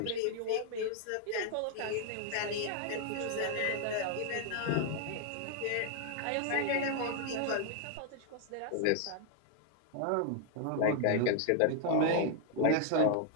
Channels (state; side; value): different; both; correlation 0.00